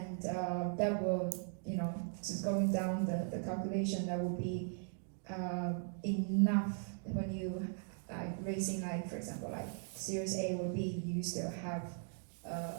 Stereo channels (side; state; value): left; silent; 52 dB below the other